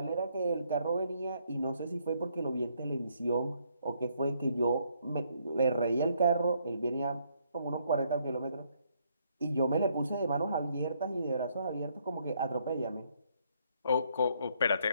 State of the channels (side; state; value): both; inverted; correlation -0.71